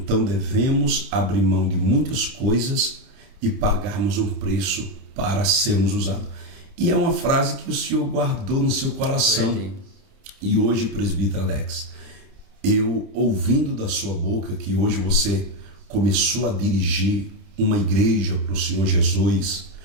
devemos abrir mão de muitas coisas e pagarmos um preço para sermos usados. E é uma frase que o Senhor guardou no seu coração. E hoje, presbítero Alex, eu ouvindo da sua boca que hoje você começou a dirigir uma igreja para o Senhor Jesus,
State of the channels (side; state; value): left; late; 31 ms